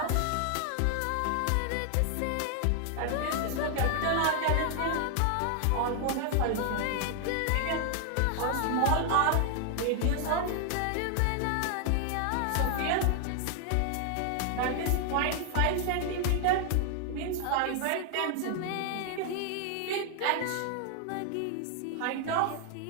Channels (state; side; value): different; both; correlation 0.00